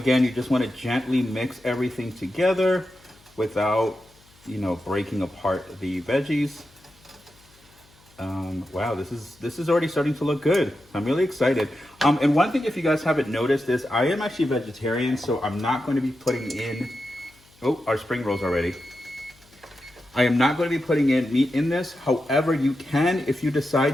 you just want to gently mix everything together without, breaking apart the veggies. Wow, this is already starting to look good. I'm really excited. And one thing, if you guys haven't noticed, is I am actually vegetarian, so I'm not going to be putting in, our spring rolls already. I am not going to be putting in meat in this. However, you can if you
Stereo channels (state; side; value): noise; left; hum, 29 dB below the sound